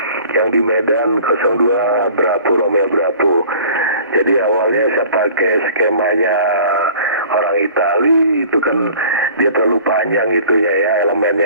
yang di Medan 02 Bravo Romeo Bravo. Jadi awalnya saya pakai skemanya orang Itali, itu kan dia terlalu panjang itunya ya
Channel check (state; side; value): inverted; both; correlation -0.47